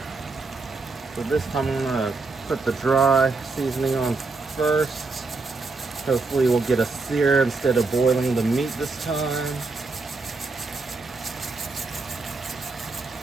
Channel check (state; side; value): quieter; left; 3.9 dB